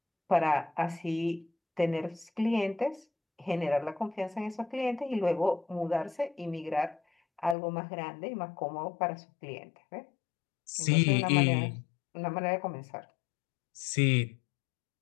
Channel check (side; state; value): right; drops out; at 7.6 s